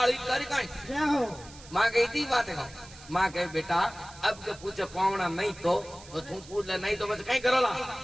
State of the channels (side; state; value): right; noise; hiss, 19 dB below the sound